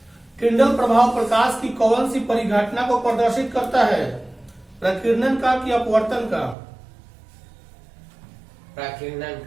किंडल प्रभाव प्रकाश की कौन सी परिघटना को प्रदर्शित करता है? प्रकीर्णन का कि अपवर्तन का? प्रकीर्णन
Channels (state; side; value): drops out; left; at 6.6 s